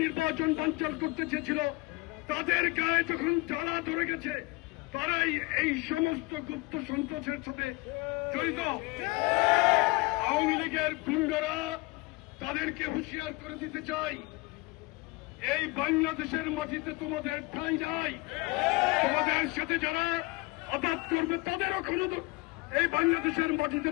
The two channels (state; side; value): quieter; right; 24.1 dB